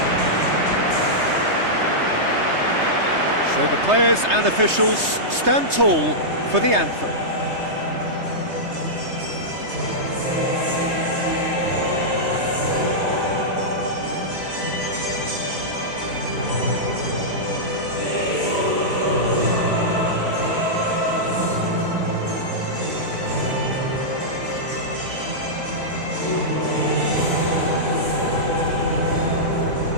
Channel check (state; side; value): late; left; 3.3 ms